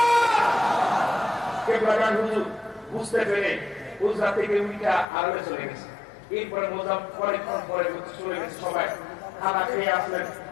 কেবলাগান হুজুর বুঝতে পেরে উজরা থেকে উইটা আড়ালে চলে গেছে। এরপরে পরেক্ষণ পরে চলে গেছে সবাই খানা খেয়ে আসলেন।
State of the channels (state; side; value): drops out; right; at 5.1 s